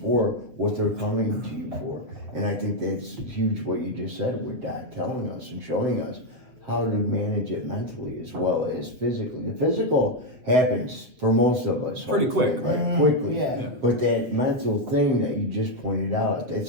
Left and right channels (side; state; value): left; late; 8.2 ms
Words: for what they're coming to you for? And I think that's huge what you just said with Doc telling us and showing us how to manage it mentally as well as physically. The physical happens for most of us. Pretty quick, right? Quickly. Yeah. But that mental thing that you just pointed out,